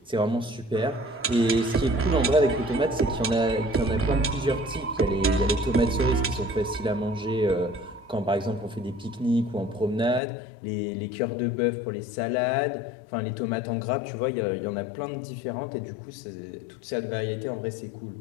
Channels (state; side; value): drops out; right; at 10.2 s